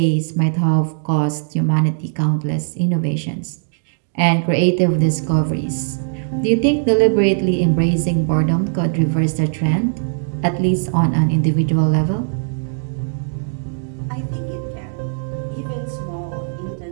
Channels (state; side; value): silent; left; digital silence